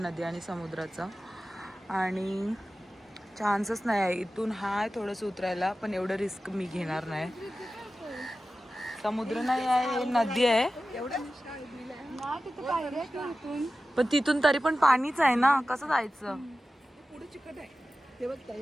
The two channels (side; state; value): both; normal; correlation 0.95